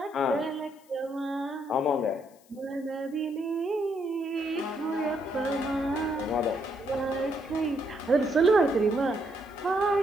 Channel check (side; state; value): left; noise; hiss, 29 dB below the sound